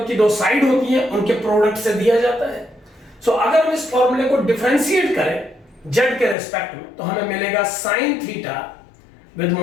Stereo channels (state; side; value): drops out; right; at 6.4 s